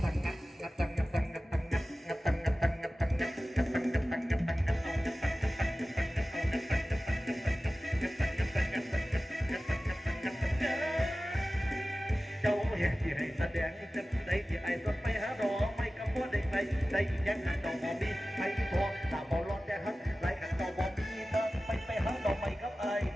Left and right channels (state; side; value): normal; both; correlation 0.96